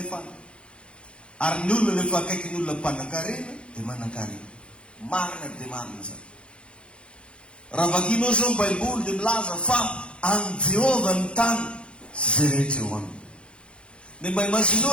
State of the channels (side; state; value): right; late; 0.058 ms